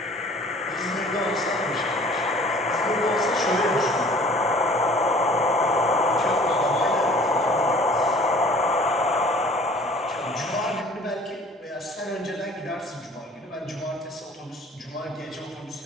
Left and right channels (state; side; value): normal; both; correlation 0.50